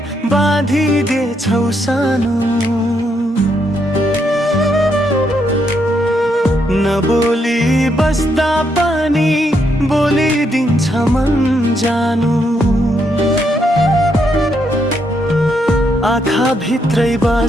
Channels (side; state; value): both; normal; correlation 0.77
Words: बाँधिदिएछौ सानो, नबोली बस्दा पनि बोलिदिन्छ मन जानु। आँखा भित्रै